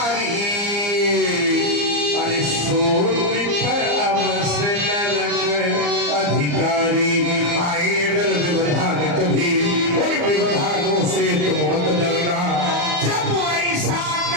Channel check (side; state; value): left; late; 34 ms